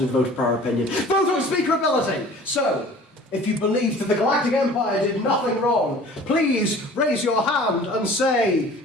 the vote of prior opinion. Vote on speakerability! So, if you believe that the Galactic Empire did nothing wrong, please raise your hand and say...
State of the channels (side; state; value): both; normal; correlation 0.46